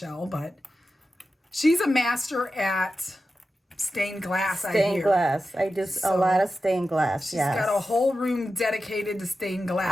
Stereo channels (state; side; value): normal; both; correlation 0.92